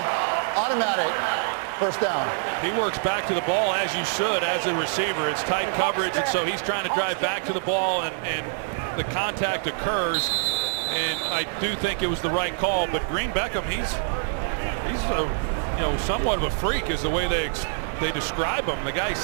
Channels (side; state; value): left; silent; digital silence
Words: automatic first down. He works back to the ball as you should as a receiver. It's tight coverage, and so he's trying to drive back to the ball, and the contact occurs. And I do think it was the right call, but Green Beckham, he's a, you know, somewhat of a freak is the way they describe him. The guy's